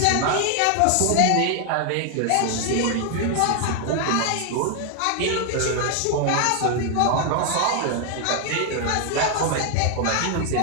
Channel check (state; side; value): different; both; correlation 0.00